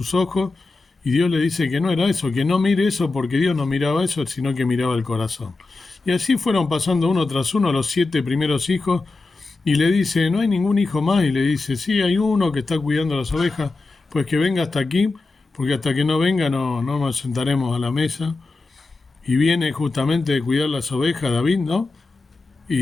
ojos, y Dios le dice que no era eso, que no mire eso porque Dios no miraba eso, sino que miraba el corazón. Y así fueron pasando uno tras uno los 7 primeros hijos, y le dice, ¿no hay ningún hijo más? Y le dice, sí, hay uno que está cuidando las ovejas, pues que venga hasta aquí, porque hasta que no venga no nos sentaremos a la mesa. Y viene justamente de cuidar las ovejas David, ¿no?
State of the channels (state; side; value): quieter; right; 3.5 dB